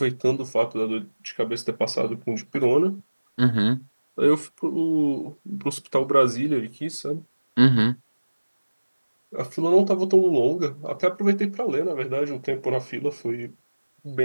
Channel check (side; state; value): both; inverted; correlation -1.00